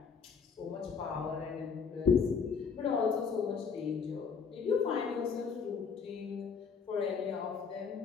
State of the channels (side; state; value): right; quieter; 5.9 dB